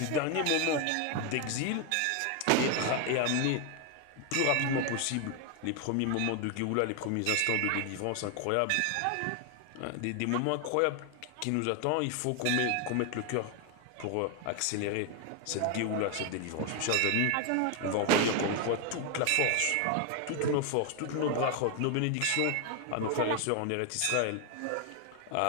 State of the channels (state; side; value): different; both; correlation 0.01